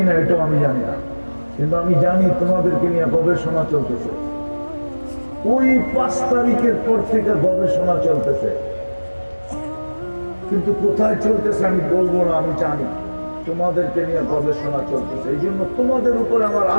এটাও আমি জানি না, কিন্তু আমি জানি তোমাদেরকে নিয়ে গবেষণা চলতেছে। ওই 5 তারিখের পর থেকে গবেষণা চলতেছে, কিন্তু কোথায় চলতেছে আমি বলবো না। আমি জানি তোমাদেরকে নিয়ে গবেষণা চলতেছে। এই জন্য তোমাদের উপরে আমার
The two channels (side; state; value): both; inverted; correlation -1.00